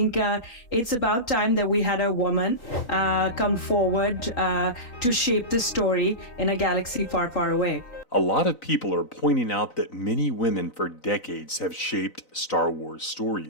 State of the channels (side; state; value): right; late; 3.9 ms